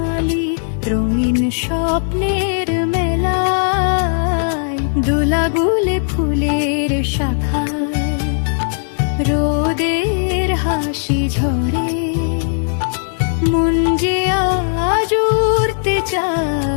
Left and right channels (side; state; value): right; silent; digital silence